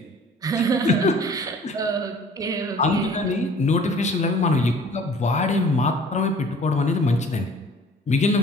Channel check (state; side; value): normal; both; correlation 0.50